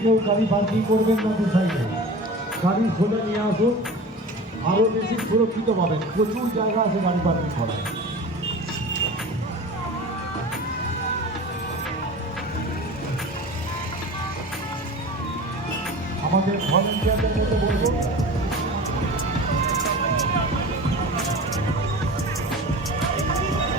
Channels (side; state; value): both; normal; correlation 0.36